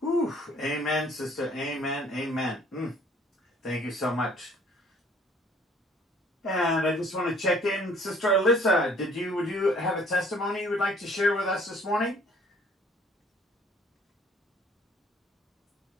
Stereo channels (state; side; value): normal; both; correlation 0.57